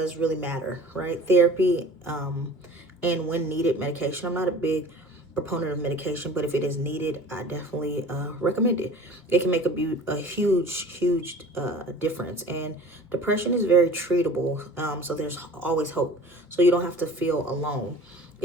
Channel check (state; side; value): normal; both; correlation 0.42